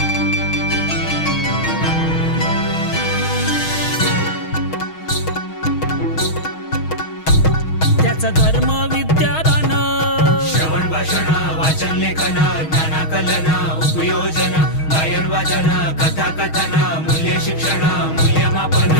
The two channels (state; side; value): late; right; 6.3 ms